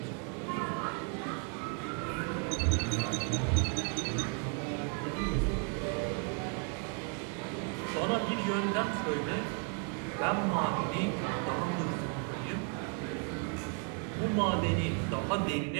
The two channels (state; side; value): quieter; left; 37.9 dB